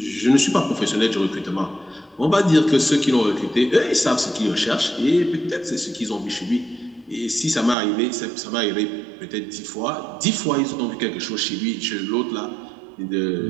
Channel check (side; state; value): left; drops out; at 7.8 s